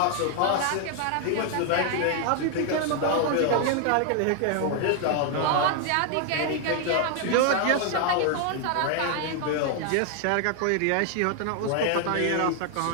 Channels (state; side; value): different; both; correlation 0.00